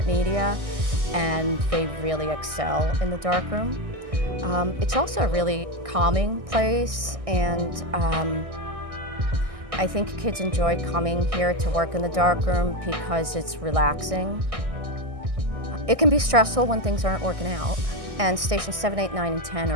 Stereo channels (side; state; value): left; late; 1.6 ms